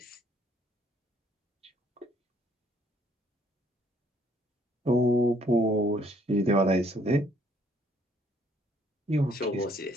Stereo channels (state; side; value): normal; both; correlation 0.65